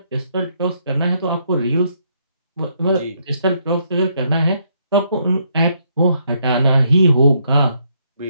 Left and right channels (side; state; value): both; inverted; correlation -0.73